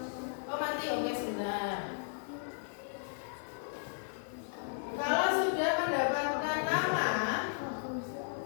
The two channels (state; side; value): silent; right; digital silence